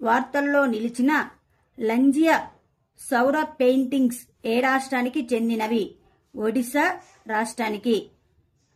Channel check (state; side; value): identical; both; correlation 1.00